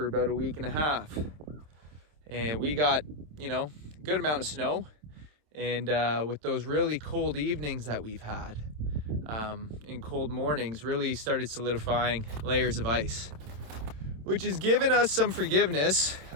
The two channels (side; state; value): left; late; 27 ms